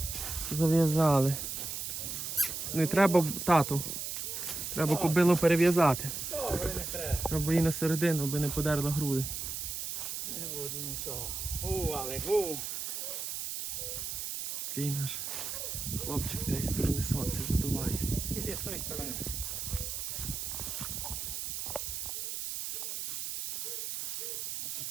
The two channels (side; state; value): right; noise; hiss, 4 dB below the sound